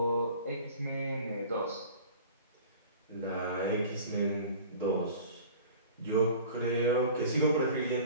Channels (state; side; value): inverted; both; correlation -0.43